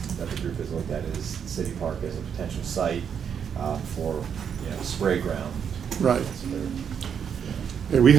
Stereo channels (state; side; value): quieter; left; 7.6 dB